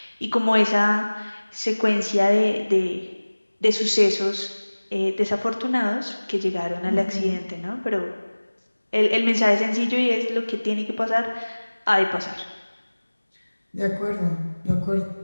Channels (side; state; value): both; inverted; correlation -1.00